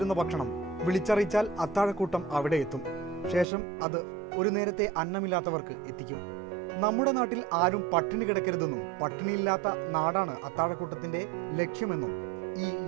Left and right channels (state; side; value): drops out; left; at 3.5 s